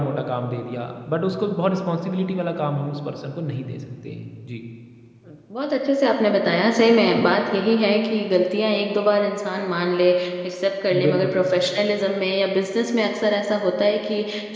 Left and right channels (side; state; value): both; identical; correlation 1.00